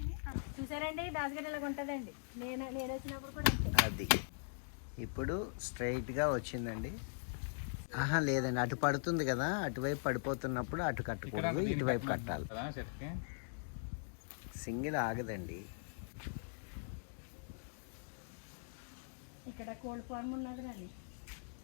చూసారండి, దాసగడ్డలాగా ఉంటుందండి. నేను వచ్చినప్పుడు కూడా అది ఇప్పుడు స్ట్రైట్గా వచ్చిందండి. లేదండి, అటు పడుతుంది కదా, అటువైపు పడిపోతున్నప్పుడు అటు కట్టకూడదు, ఇటువైపు కట్టాలి. సింగిల్ ఆగదండి. ఇక్కడ కోల్డ్ ఫార్మ్ ఉన్నది రాని.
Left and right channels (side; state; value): right; silent; digital silence